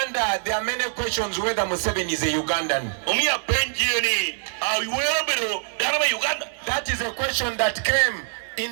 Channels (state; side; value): silent; left; 60 dB below the other